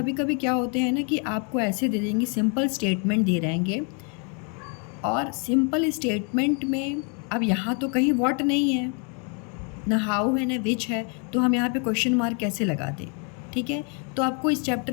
कभी क्या होते हैं ना कि आपको ऐसे दे देंगे, सिंपल स्टेटमेंट दे रहेंगे, और सिंपल स्टेटमेंट में अब यहाँ तो कहीं व्हाट नहीं है, ना हाउ है, ना विच है, तो हम यहाँ पे क्वेश्चन मार्क कैसे लगा दें। ठीक है, तो आपको इस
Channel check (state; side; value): quieter; right; 37.5 dB